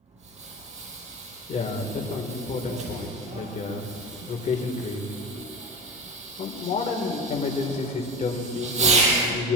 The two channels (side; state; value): both; normal; correlation 0.26